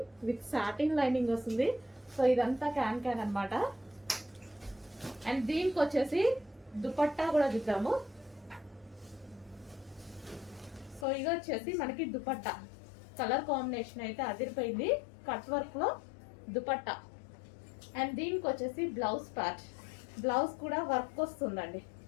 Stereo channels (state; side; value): drops out; right; at 11.1 s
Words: with satin lining వస్తుంది. సో ఇదంతా క్యాన్ క్యాన్ అనమాట. అండ్ దీనికి వచ్చేసి దుపట్టా కూడా చూద్దాము. సో ఇది వచ్చేసి మనకి దుపట్టా, కలర్ కాంబినేషన్ అయితే అదిరిపోయింది. కట్ వర్క్ లో దుపట్టా. అండ్ దీనికి వచ్చేసి బ్లౌజ్ పార్ట్, బ్లౌజ్ కూడా వర్క్ వస్తుందండి.